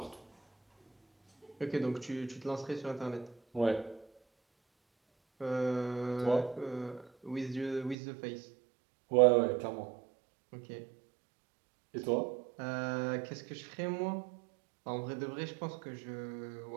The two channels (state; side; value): drops out; left; at 8.0 s